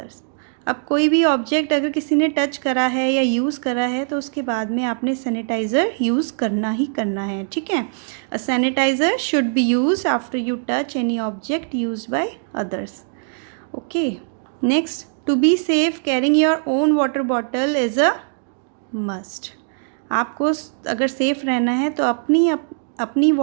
अब कोई भी ऑब्जेक्ट अगर किसी ने टच करा है या यूज़ करा है तो उसके बाद में आपने सैनिटाइज़र यूज़ करना ही करना है, ठीक है। A sanitiser should be use after you touch any object use by others. Okay, next to be safe carrying your own water bottle is a must. आपको अगर सेफ रहना है तो अपनी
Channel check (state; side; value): silent; left; digital silence